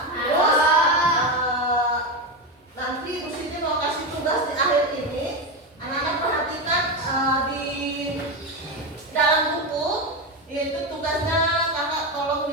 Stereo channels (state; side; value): normal; both; correlation 0.14